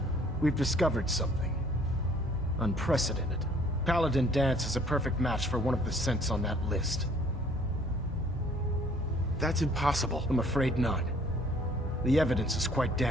we've discovered something unprecedented. Paladin Danse is a perfect match for one of the synths on that list. That's impossible. I'm afraid not. The evidence is quite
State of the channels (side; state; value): both; normal; correlation 0.57